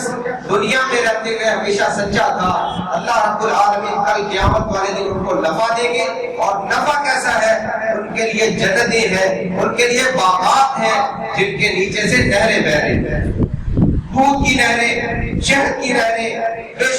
دنیا میں رہتے ہوئے ہمیشہ سچا تھا، اللہ رب العالمین کل قیامت والے دن ان کو نفع دیں گے. اور نفع کیسا ہے؟ ان کے لیے جنتیں ہیں، ان کے لیے باغات ہیں جن کے نیچے سے نہریں بہ رہی ہیں، دودھ کی نہریں، شہد کی نہریں، بے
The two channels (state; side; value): identical; both; correlation 1.00